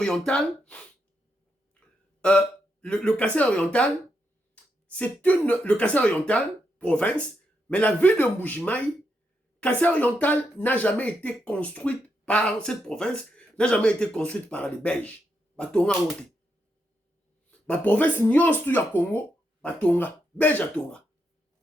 le Kasai oriental, c'est le Kasai oriental province, mais la ville de Mbujimayi, Kasai oriental n'a jamais été construite par cette province, n'a jamais été construite par les Belges. Batonga monte. Ma province nyons tout ya Congo, Batonga, Belge à Tonga.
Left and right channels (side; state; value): both; normal; correlation 0.81